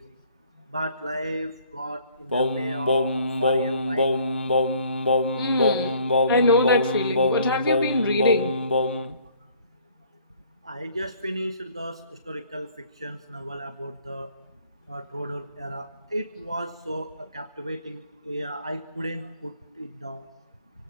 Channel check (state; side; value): inverted; both; correlation -0.57